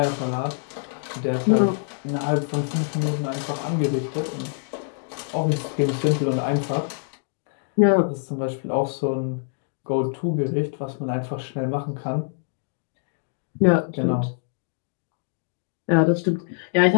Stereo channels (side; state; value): right; silent; digital silence